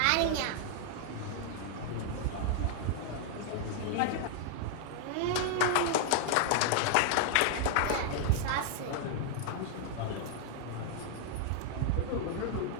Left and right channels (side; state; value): both; different; correlation 0.00